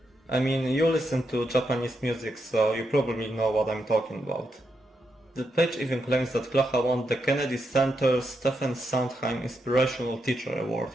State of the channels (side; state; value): both; normal; correlation 0.83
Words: I mean, you listen to Japanese music, so you probably know what I'm talking about. The page even claims that Klaha won the Kennedy Center Stephen Sondheim Inspirational Teacher Award